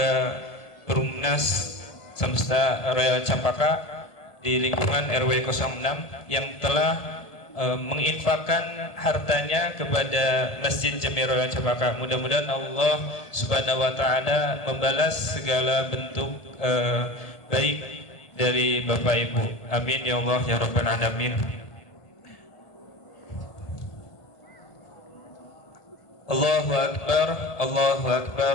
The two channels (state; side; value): late; right; 1.7 ms